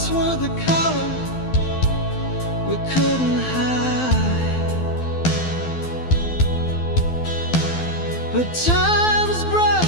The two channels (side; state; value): right; late; 12 ms